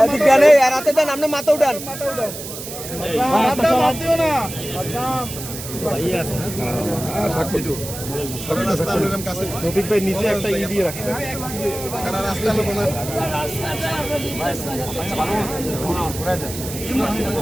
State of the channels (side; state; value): right; noise; hiss, 10 dB below the sound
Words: রাতে দেন আপনি মাথা উঠান রফিক ভাই নিচে একটা ই দিয়ে রাখছে